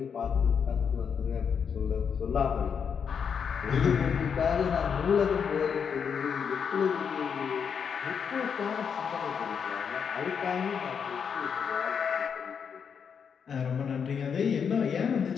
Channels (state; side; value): quieter; right; 6.9 dB